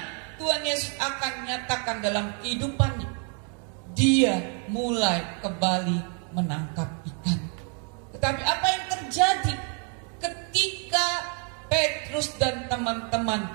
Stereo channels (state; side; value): quieter; left; 40.0 dB